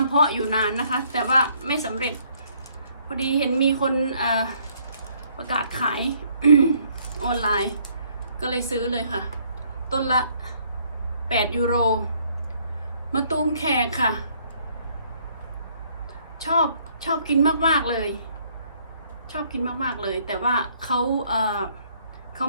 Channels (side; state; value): both; inverted; correlation -0.65